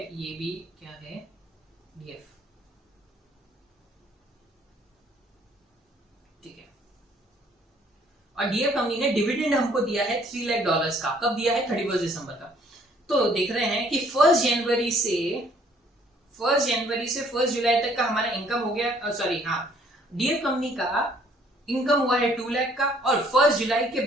ये भी क्या है, डीएफ, ठीक है, और डीएफ कंपनी ने डिविडेंड हमको दिया है $3 लाख का, कब दिया है, 31 दिसंबर का। तो देख रहे हैं कि 1 जनवरी से 1 जुलाई तक का हमारा इनकम हो गया, सॉरी हाँ, डीएफ कंपनी का इनकम हुआ है 2 लाख का, और 1 जुलाई के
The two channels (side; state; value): both; normal; correlation 0.61